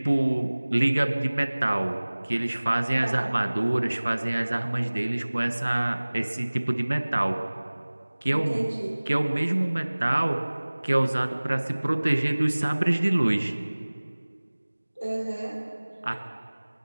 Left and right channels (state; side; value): inverted; both; correlation -1.00